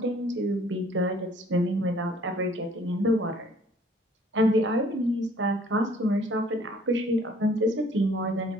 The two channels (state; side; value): normal; both; correlation 0.57